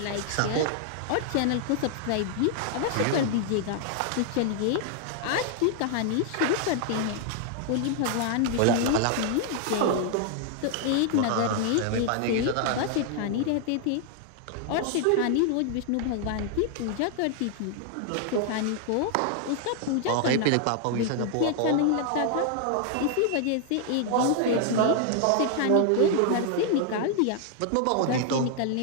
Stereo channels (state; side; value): different; both; correlation 0.00